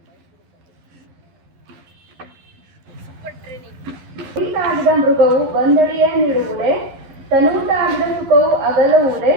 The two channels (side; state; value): left; late; 12 ms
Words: ಮೃಗವು ಬಂದಡಿಯ ನೀಡುವುದೇ, ತನೂಟಾಗಿದ ಸುಖವು ಅಗಲುವುದೇ,